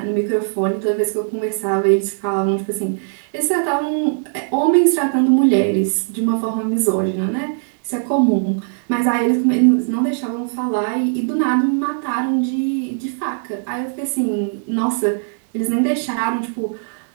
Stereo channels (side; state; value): left; silent; digital silence